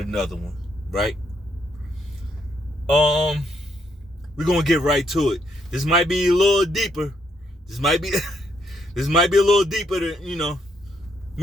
another one, right? We're gonna get right to it. This might be a little deeper. This might be a little deeper than,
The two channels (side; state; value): both; normal; correlation 0.74